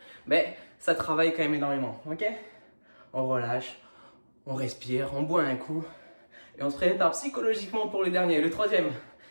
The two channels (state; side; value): inverted; both; correlation -1.00